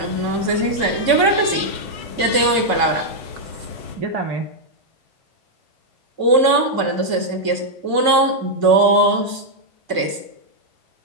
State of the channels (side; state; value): left; late; 2.2 ms